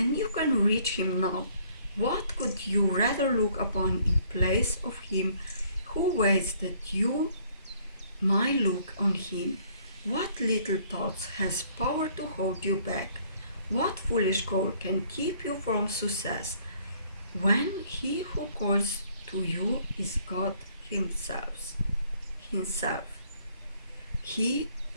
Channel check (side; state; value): both; inverted; correlation -0.62